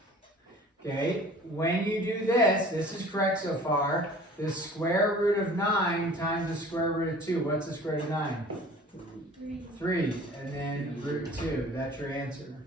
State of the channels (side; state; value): both; normal; correlation 0.46